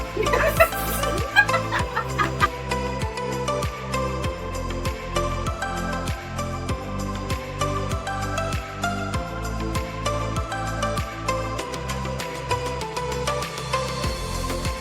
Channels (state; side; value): identical; both; correlation 1.00